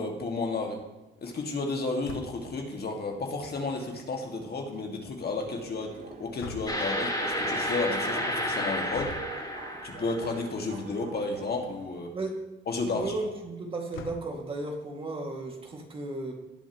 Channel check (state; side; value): normal; both; correlation 0.34